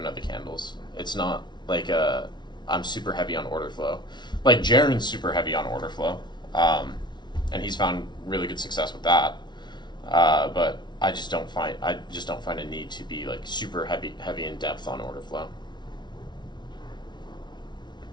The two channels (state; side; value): late; right; 0.21 ms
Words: of the candles. It's not like I'm super heavy on order flow. Like Jaren's super heavy on order flow, and he's found really good success with that. But I just don't find a need to be like super heavy in depth on order flow.